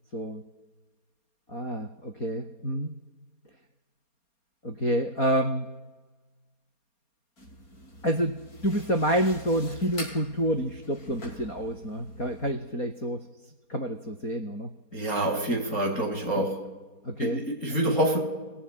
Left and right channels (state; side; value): late; right; 4.3 ms